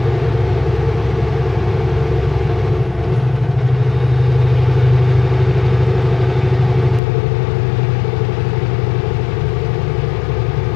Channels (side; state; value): right; drops out; at 7.0 s